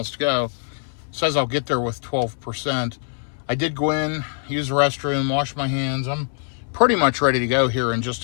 to go. It says I'll get there with 12%. I did go in, use the restroom, wash my hands. I'm pretty much ready to go here in just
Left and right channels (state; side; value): silent; right; 64 dB below the other